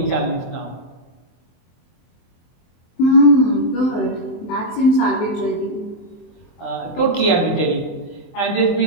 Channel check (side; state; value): right; late; 23 ms